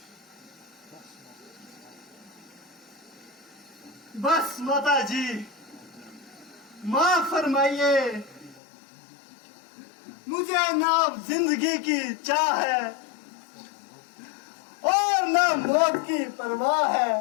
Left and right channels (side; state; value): right; drops out; at 8.6 s